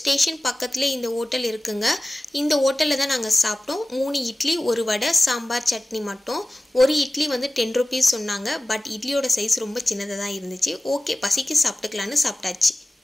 பக்கத்தில் இந்த ஹோட்டல் இருக்குங்க. இந்த ஹோட்டலில் தான் நாங்கள் சாப்பிட்டோம். 3 இட்லி, 1 வடை, சாம்பார், சட்னி மட்டும். ஒரு இட்லி வந்து 10 rupees சொன்னாங்க. பட் இட்லியோட சைஸ் ரொம்ப சின்னதாக தான் இருந்துச்சு. ஓகே, பசிக்கு சாப்பிட்டுக்கலான்னு சாப்பிட்டாச்சு.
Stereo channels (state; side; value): normal; both; correlation 0.96